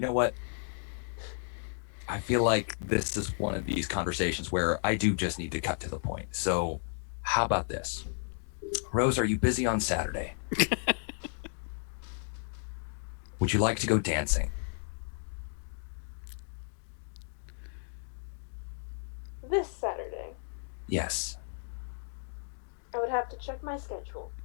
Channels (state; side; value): silent; right; digital silence